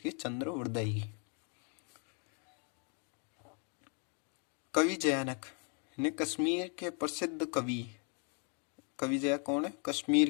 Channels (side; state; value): right; quieter; 39.2 dB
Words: चंद्रवरदाई की। कवि जयानक ने कश्मीर के प्रसिद्ध कवि, कवि जया कौन है,